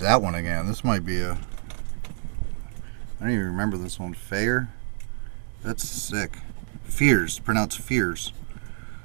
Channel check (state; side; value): silent; left; 60 dB below the other